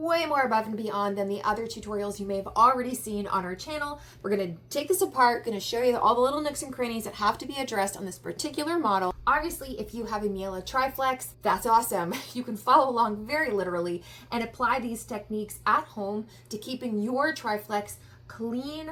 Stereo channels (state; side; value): identical; both; correlation 1.00